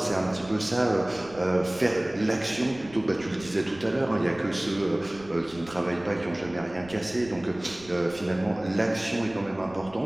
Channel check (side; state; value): right; noise; rumble, 21 dB below the sound